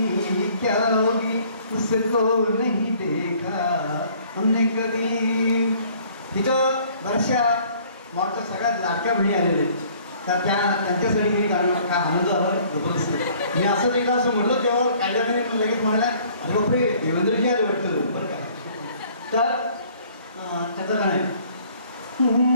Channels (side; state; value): both; inverted; correlation -0.57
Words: उसको नहीं देखा हमने कभी. तिथं बऱ्याचशा मॉडच्या सगळ्यात लाडक्या बहिणी आलेल्या आहेत, तर त्यांच्यासाठी मी कारण काय आनंद झाला जबरदस्त. मी असं एकदा असं म्हटलं तेव्हा कायद्याने लगेच म्हणाल्या अरे बापरे देवेंद्रजी आले वाटतं बरं काय. तर त्याचं गाणं आहे